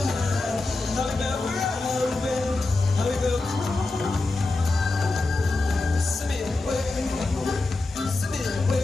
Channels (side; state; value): right; quieter; 3.3 dB